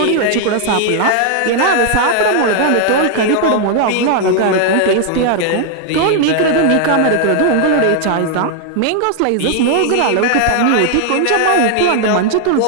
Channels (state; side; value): different; both; correlation 0.00